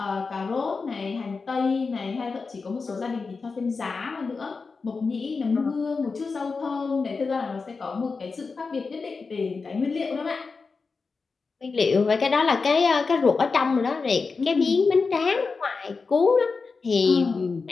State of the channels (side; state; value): right; quieter; 4.5 dB